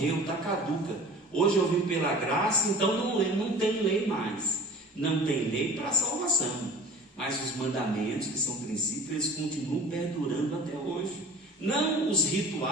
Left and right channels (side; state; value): both; normal; correlation 0.42